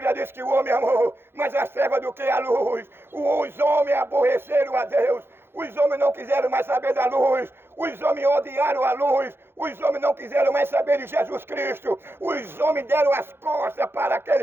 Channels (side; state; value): left; late; 0.11 ms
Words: diz que o homem amou mais as trevas do que a luz. Os homens aborreceram a Deus. Os homens não quiseram mais saber da luz. Os homens odiaram a luz. Os homens não quiseram mais saber de Jesus Cristo. Os homens deram as costas para